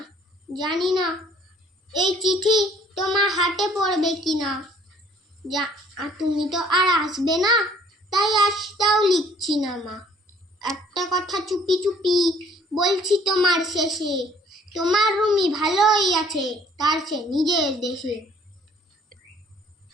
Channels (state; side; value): normal; both; correlation 0.58